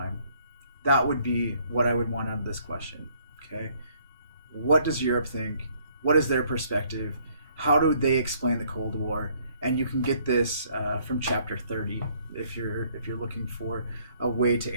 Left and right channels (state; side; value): inverted; both; correlation -0.64